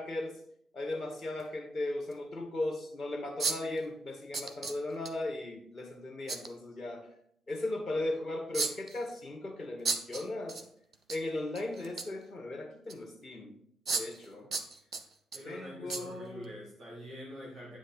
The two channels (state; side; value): normal; both; correlation 0.80